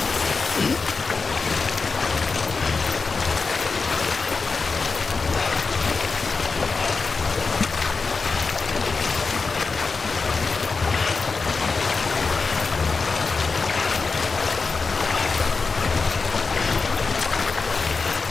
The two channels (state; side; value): quieter; right; 4.4 dB